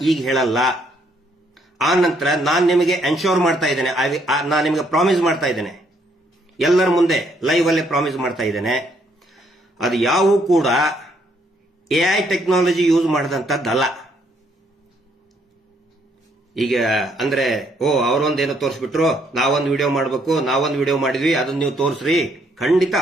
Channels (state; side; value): normal; both; correlation 0.70